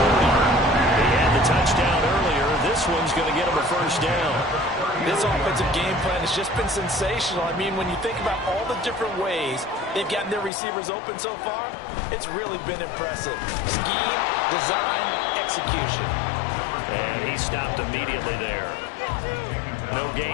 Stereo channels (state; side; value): drops out; right; at 10.5 s